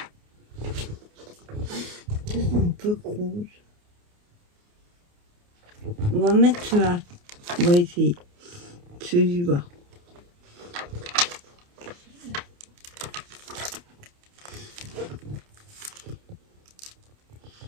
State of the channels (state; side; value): late; left; 28 ms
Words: c'est un peu rouge. On va mettre cela. On va essayer. Celui-là.